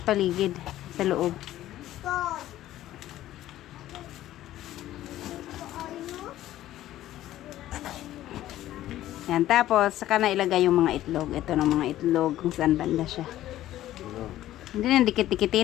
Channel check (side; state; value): right; quieter; 13.9 dB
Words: paligid, sa loob. Yan, tapos saka na ilagay yung mga itlog. Ito ng mga itlog kung saan banda siya. Hindi na